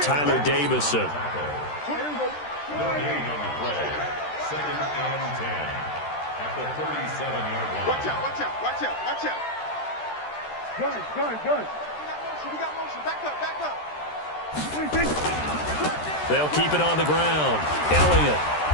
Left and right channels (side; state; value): right; late; 13 ms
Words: Davison. Watch out, watch out, watch out, watch out. Gun. We got motion. Back up, back up. They'll keep it on the ground. Elliott.